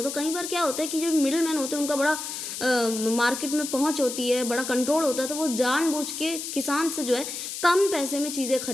तो कई बार क्या होता है कि जो मिडिल मैन होते हैं उनका बड़ा मार्केट में पहुंच होती है, बड़ा कंट्रोल होता है, तो वो जानबूझ के किसान से जो है कम पैसे में चीज़ें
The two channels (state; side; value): noise; left; hiss, 6 dB below the sound